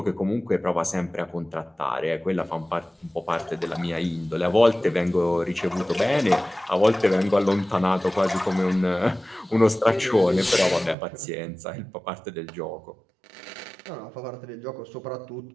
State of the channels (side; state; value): left; drops out; at 11.0 s